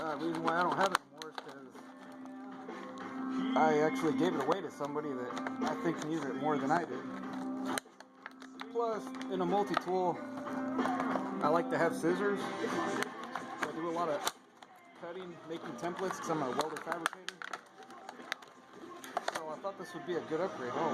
reason why I don't have it anymore is because I actually gave it away to somebody that I think needs it more than I did. Plus, in a multi-tool, I like to have scissors. So I do a lot of cutting, making templates, because I'm a welder fabricator. So I thought this would be a good upgrade. Oh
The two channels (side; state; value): both; identical; correlation 1.00